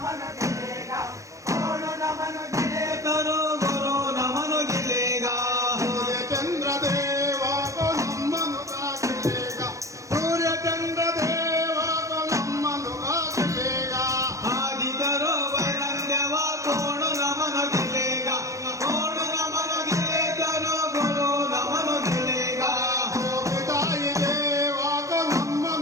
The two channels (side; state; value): left; late; 0.15 ms